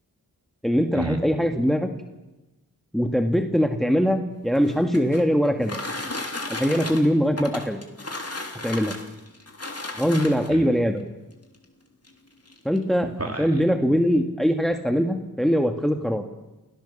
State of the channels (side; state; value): both; normal; correlation 0.90